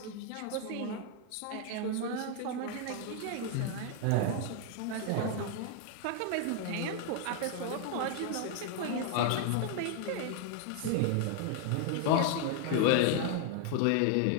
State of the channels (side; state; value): both; different; correlation 0.00